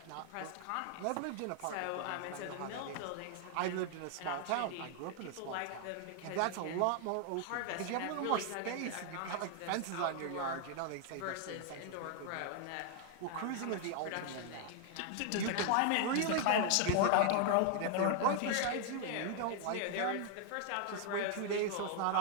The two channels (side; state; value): both; different; correlation 0.00